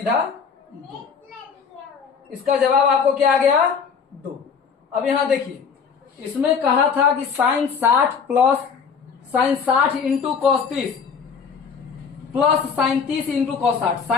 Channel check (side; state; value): right; quieter; 6.1 dB